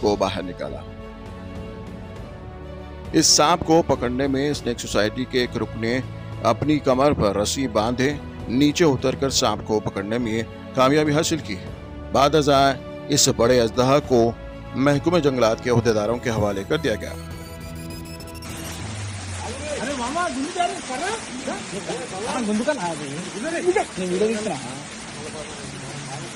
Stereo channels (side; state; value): both; identical; correlation 1.00